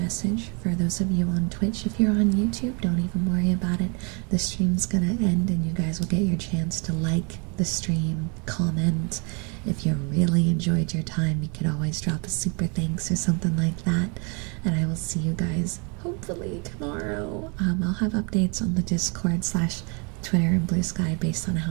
for those of you on Twitch. If you're on YouTube, don't even worry about it. The stream's gonna end and you guys will get your chance to like the stream, comment. If you really enjoyed your time, you could always drop a super thanks or something like that. And I will see you guys hopefully tomorrow. I'll have updates on the Discord / Twitter and Blue Sky based on how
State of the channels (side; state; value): left; quieter; 33.5 dB